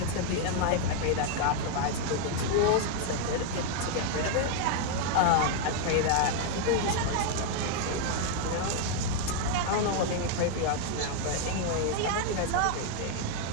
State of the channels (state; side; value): different; both; correlation 0.00